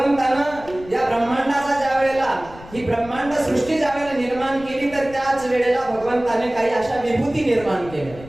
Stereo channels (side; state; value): left; noise; rumble, 18 dB below the sound